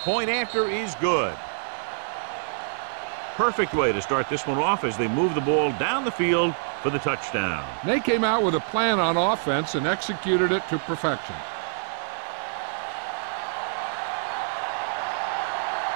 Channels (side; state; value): left; silent; 56 dB below the other